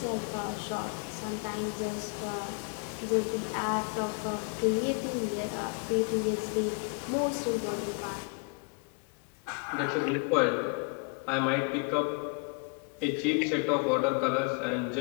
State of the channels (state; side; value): quieter; right; 35.0 dB